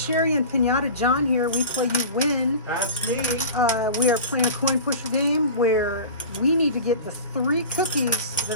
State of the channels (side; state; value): both; inverted; correlation -0.35